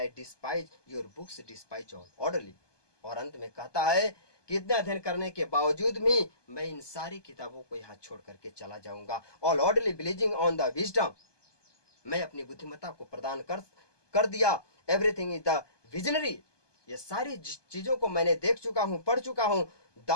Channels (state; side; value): late; right; 1.2 ms